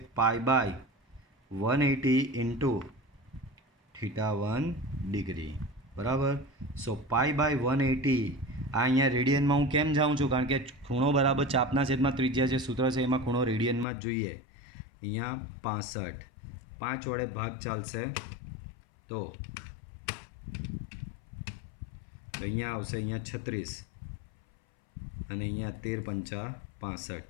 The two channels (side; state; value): right; drops out; at 13.9 s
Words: π/180 ઇન્ટુ θ1 ડિગ્રી. બરાબર. સો π/180 આ અહીંયા રેડિયનમાં હું કેમ જાઉં છું? કારણ કે ખૂણો બરાબર ચાપના છેદમાં ત્રિજ્યા જે સૂત્ર છે એમાં ખૂણો રેડિયનમાં જ જોઈએ. અહીંયા 65 5 વડે ભાગ ચાલશે તો અહીંયા આવશે અહીંયા 36 અને અહીંયા 13 × 5 65.